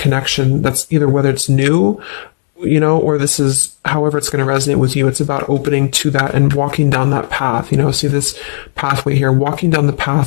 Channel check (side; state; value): right; silent; 71 dB below the other